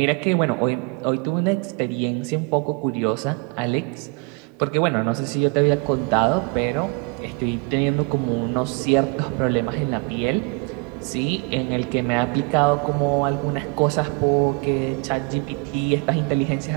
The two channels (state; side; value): quieter; left; 29.7 dB